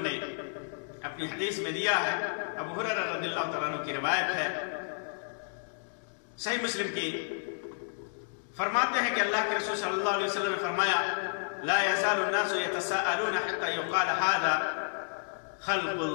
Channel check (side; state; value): right; silent; digital silence